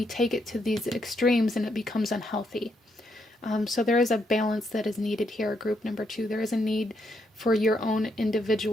take it to these extremes and it becomes unhealthy. So there is a balance that is needed here, group number 2. There is a need for your own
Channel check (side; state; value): both; normal; correlation 0.77